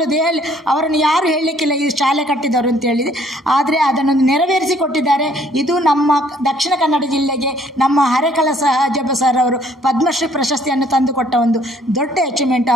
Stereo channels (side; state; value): both; normal; correlation 0.62